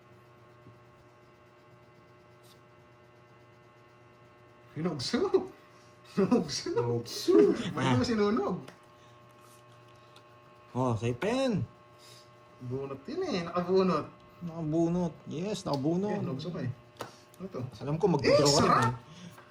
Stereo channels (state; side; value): identical; both; correlation 1.00